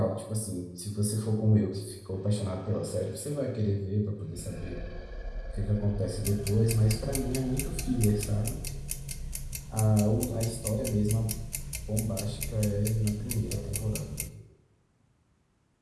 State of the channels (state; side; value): identical; both; correlation 1.00